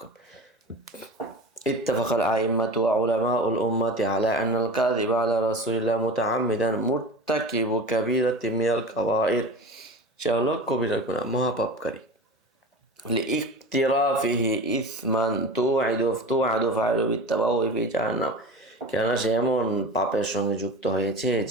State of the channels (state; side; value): normal; both; correlation 0.32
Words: ইত্তাফাকাল আইম্মাতু ওয়া উলামাউল উম্মাতি আলা আন্নাল কাযিব আলা রাসূলিল্লাহ মুতাআম্মিদান মুরতাকিবু কাবীরাতিন মিনাল কাবাইর, সে হলো কবিরা গুনাহ, মহাপাপকারী। লিইকতিরাফিহি ইসমান তুআদু ফাইলু বিত্তাবাউই ফি জাহান্নাম, কেননা সে এমন পাপের সঙ্গে যুক্ত হয়েছে